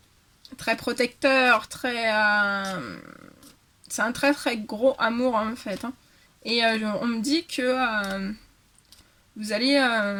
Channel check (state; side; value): identical; both; correlation 1.00